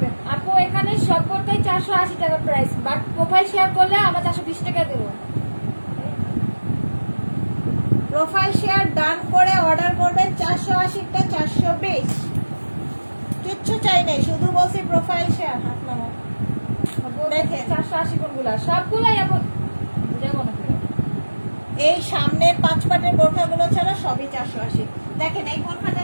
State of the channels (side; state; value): both; inverted; correlation -1.00